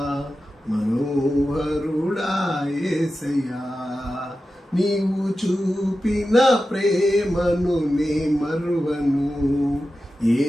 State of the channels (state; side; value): normal; both; correlation 0.92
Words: మనోహరుడా యేసయ్యా. నీవు చూపిన ప్రేమను నే మరువను ఏ